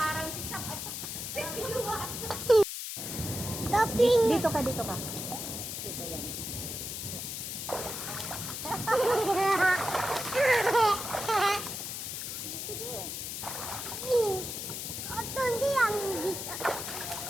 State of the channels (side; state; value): left; noise; hiss, 5 dB below the sound